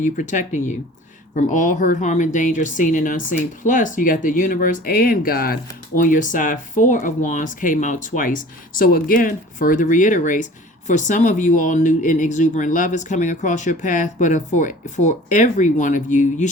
protecting you from all hurt, harm, and danger, seen and unseen. Plus, you got the universe and God on your side. 4 of Wands came out twice. So again, further reiterates, For some of you all, new and exuberant love is coming across your path, but for every one of you, you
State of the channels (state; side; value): normal; both; correlation 0.45